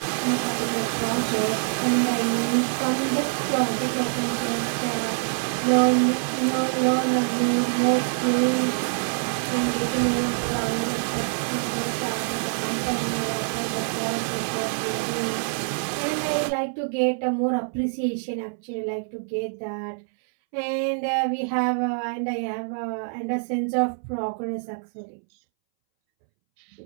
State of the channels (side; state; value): left; silent; 62 dB below the other